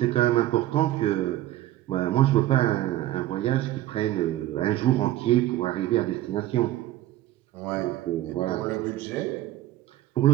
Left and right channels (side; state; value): left; quieter; 14.6 dB